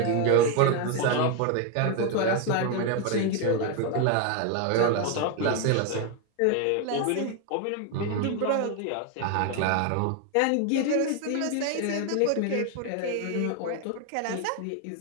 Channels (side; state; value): both; different; correlation 0.01